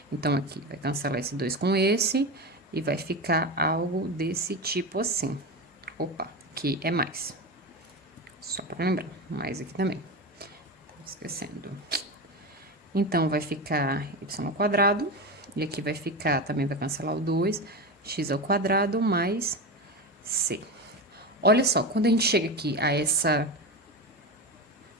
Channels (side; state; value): both; normal; correlation 0.21